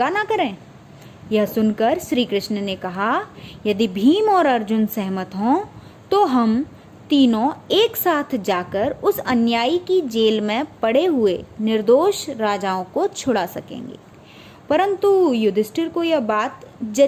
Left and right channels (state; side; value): identical; both; correlation 1.00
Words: ना करें। यह सुनकर श्री कृष्ण ने कहा, यदि भीम और अर्जुन सहमत हों तो हम तीनों एक साथ जाकर उस अन्यायी की जेल में पड़े हुए निर्दोष राजाओं को छुड़ा सकेंगे। परंतु युधिष्ठिर को यह बात